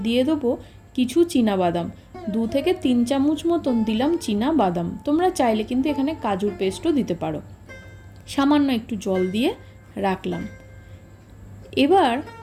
দিয়ে দেবো কিছু চীনাবাদাম। 2 থেকে 3 চামচ মতন দিলাম চীনাবাদাম। তোমরা চাইলে কিন্তু এখানে কাজুর পেস্টও দিতে পারো। সামান্য একটু জল দিয়ে রাখলাম। এবার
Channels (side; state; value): both; identical; correlation 1.00